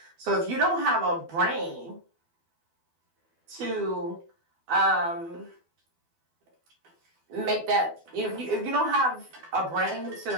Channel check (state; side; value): late; left; 12 ms